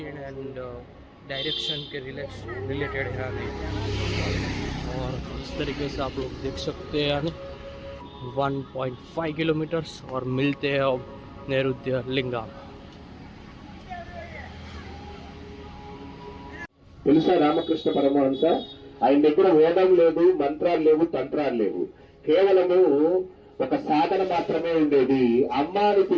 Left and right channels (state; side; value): identical; both; correlation 1.00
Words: एंड डायरेक्शन के रिलेटेड है यानी। और इस तरीके से आप लोग देख सकते हैं यानी 1.5 किलोमीटर्स और मिलते हैं अब नैऋत्य लिंगा। తెలుసా రామకృష్ణ పరమహంస ఆయన దగ్గర వేదం లేదు, మంత్రాలు లేవు, తంత్రాలు లేవు, కేవలము ఒక సాధన మాత్రమే ఉండేది. అమ్మాని